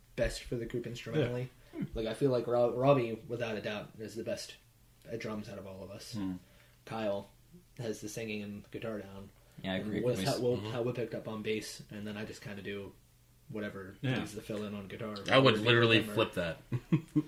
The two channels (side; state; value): both; identical; correlation 1.00